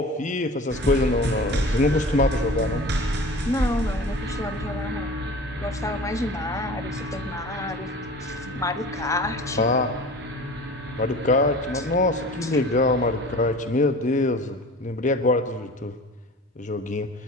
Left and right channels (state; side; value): normal; both; correlation 0.39